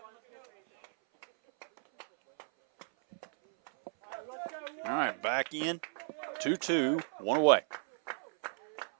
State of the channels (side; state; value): left; silent; 55 dB below the other